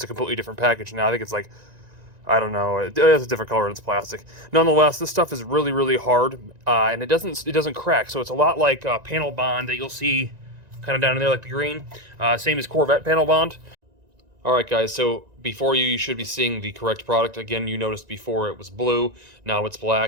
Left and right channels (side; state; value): left; late; 1.9 ms